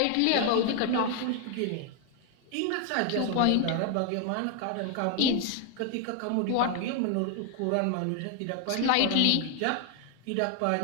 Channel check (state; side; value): different; both; correlation 0.01